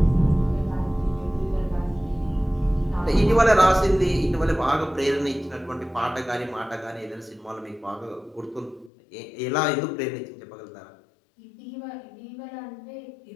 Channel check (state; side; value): drops out; right; at 8.9 s